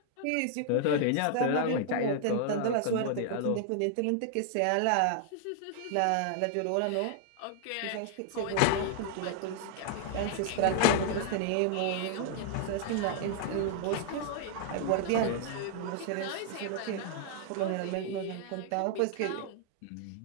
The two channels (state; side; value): different; both; correlation 0.00